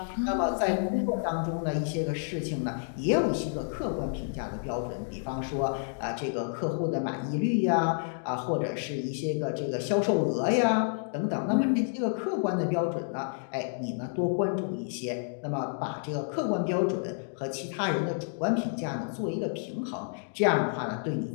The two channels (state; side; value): silent; right; digital silence